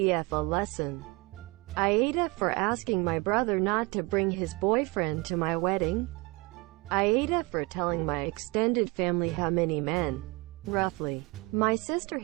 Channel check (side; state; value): left; quieter; 25.7 dB